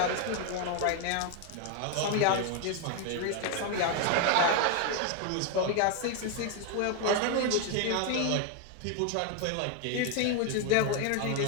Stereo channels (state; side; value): different; both; correlation 0.01